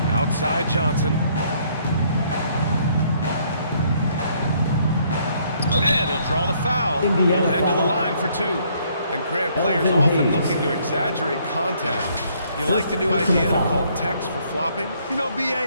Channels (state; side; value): inverted; both; correlation -0.66